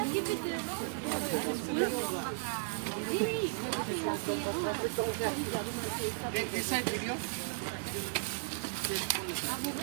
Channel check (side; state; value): left; silent; digital silence